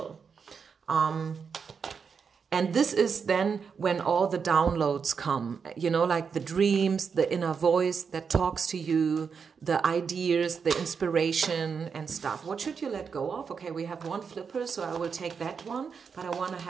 And this is then when all the downloads come, you know, like the dreams, the inner voice that talks to you, the ideas, the inspiration and stuff. What should you let go of? Okay, we have one flipper, so I will take that one, but I want to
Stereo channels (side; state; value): left; quieter; 6.0 dB